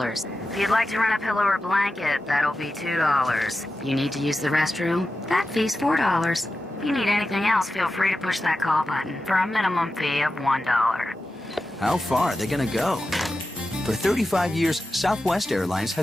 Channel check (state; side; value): normal; both; correlation 0.92